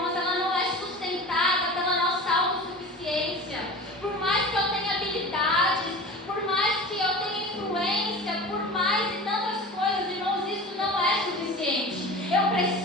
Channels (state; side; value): normal; both; correlation 0.35